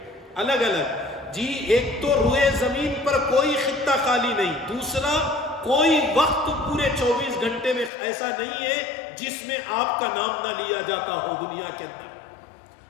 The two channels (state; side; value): drops out; right; at 7.9 s